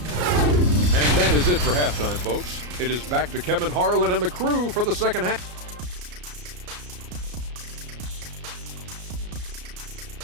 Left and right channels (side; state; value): left; late; 33 ms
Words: And that is it for halftime, folks. It is back to Kevin Harlan and the crew for the second half.